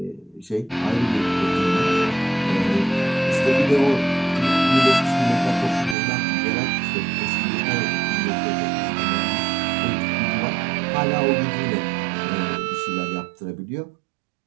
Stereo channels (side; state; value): left; drops out; at 6.0 s